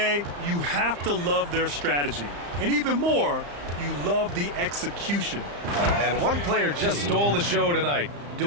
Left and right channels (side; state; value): left; late; 35 ms